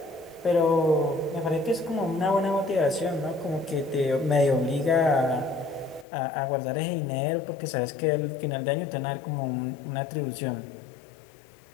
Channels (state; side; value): drops out; right; at 6.1 s